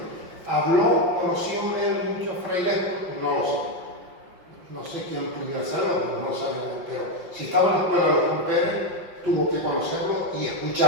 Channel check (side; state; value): left; late; 5.6 ms